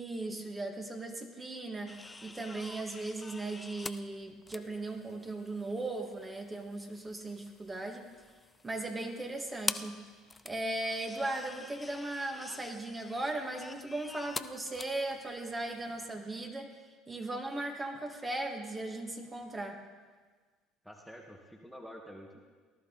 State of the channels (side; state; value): both; normal; correlation 0.84